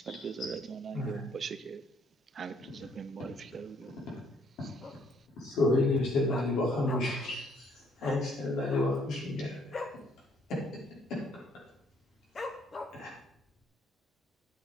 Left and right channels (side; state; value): both; normal; correlation 0.66